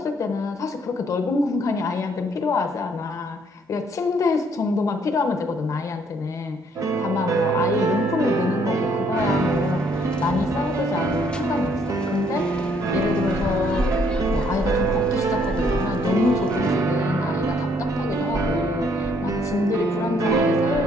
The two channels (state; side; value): normal; both; correlation 0.66